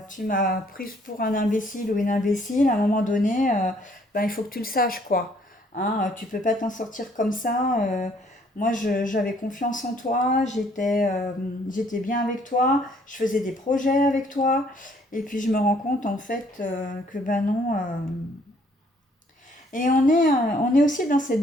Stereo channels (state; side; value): normal; both; correlation 0.63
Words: prise pour un imbécile ou une imbécile, à un moment donné, ben, il faut que tu le saches, quoi. Hein, tu peux pas t'en sortir comme ça. Moi, j'avais confiance en toi, j'étais bien avec toi, je faisais des projets avec toi, et puis je me rends compte en fait que ben non. Et on est aussi dans cette